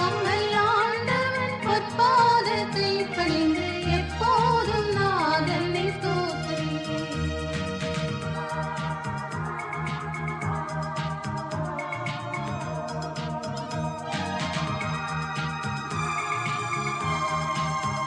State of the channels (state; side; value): identical; both; correlation 1.00